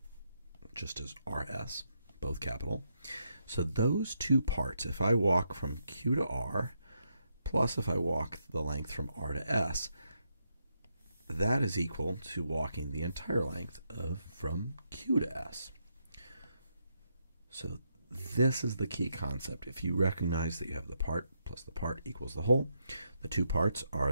just as RS, both capital. So those two parts, if I walk from Q to R, plus if I walk the length from R to S, that is equal to walking the entire length of from Q to S. So this is the key concept. If you recognize that you have the part plus the part equals the whole, the two parts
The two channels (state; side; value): inverted; both; correlation -0.80